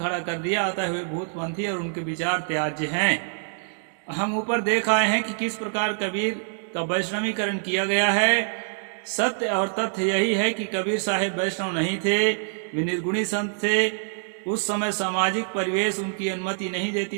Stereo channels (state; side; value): silent; left; digital silence